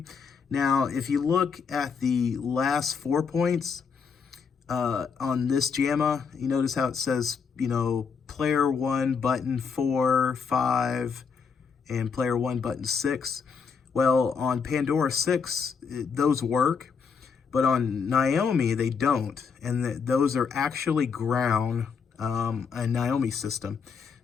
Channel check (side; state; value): right; quieter; 5.9 dB